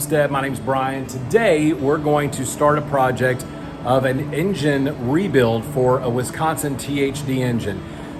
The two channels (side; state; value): both; identical; correlation 1.00